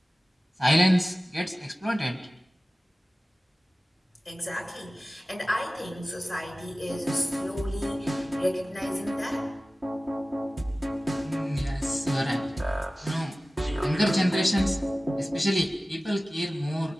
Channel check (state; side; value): normal; both; correlation 0.97